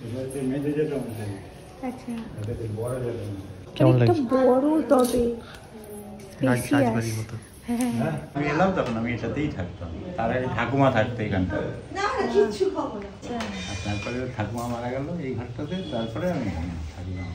কেমন লাগছে? বড় তবে রাজবাড়ির মতো। আমি এলাম তখন আমি এটাতেই থাকতাম, তার আগে ঠাকুমা থাকতো এখানটা। তারপরে ঠাকুমা মারা গেল এই ঘরটাতে, তারপরে আমি এখানে থাকলাম।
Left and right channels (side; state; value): both; identical; correlation 1.00